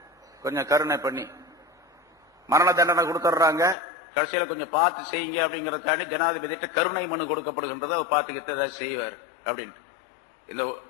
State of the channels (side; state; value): right; drops out; at 3.8 s